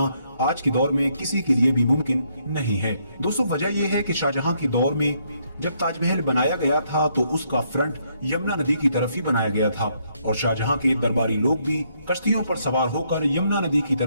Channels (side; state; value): both; inverted; correlation -0.73